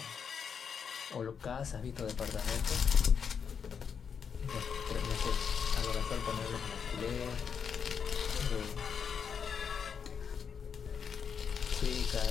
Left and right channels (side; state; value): right; quieter; 6.8 dB